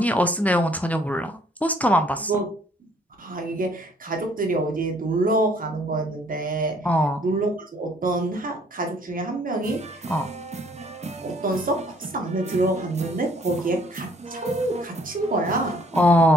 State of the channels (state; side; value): normal; both; correlation 0.61